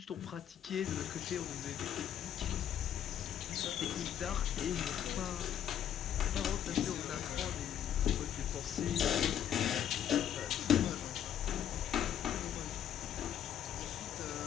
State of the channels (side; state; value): right; quieter; 9.9 dB